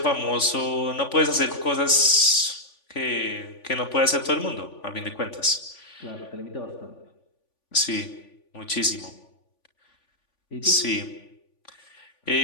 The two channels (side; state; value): right; late; 3.5 ms